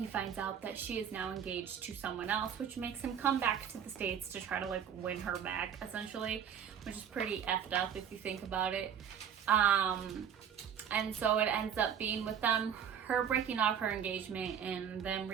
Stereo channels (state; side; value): quieter; left; 8.4 dB